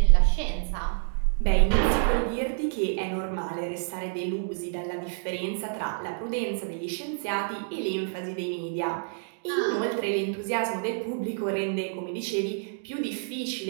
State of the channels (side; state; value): left; silent; digital silence